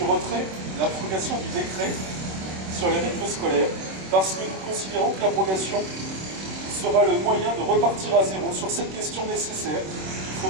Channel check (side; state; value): left; late; 26 ms